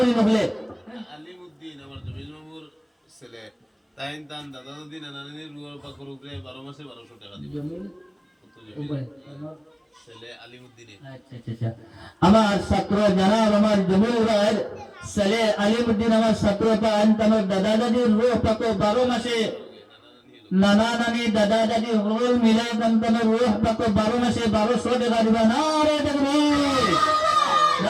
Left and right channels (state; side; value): identical; both; correlation 1.00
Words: নহলে আলিমউদ্দিন আমার জমির মামুর ছেলে তাইন তান দাদা দাদি নানা নানির রুয়ার পাকর উপরে 12 মাসে 1200 টাকা দিবে জমিন ছেলে আলিমউদ্দিনের আচ্ছা আমার ছাত্র জানাব আমার জমির ছেলে আলিমউদ্দিন আমার ছাত্র পান আমার দাদা দাদির রুহ পাকো 12 মাসে নানা নানি দাদা দাদি রোল মিলে তার রুহ পাকো 12 মাসে 1200 টাকা দিবা না রে তাকবীর